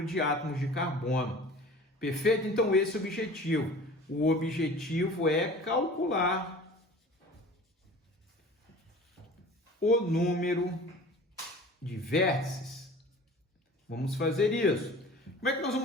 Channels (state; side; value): normal; both; correlation 0.42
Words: de átomos de carbono. Perfeito? Então esse é o objetivo. O objetivo é calcular o número de vértices. Vamos fazer isso. Como é que nós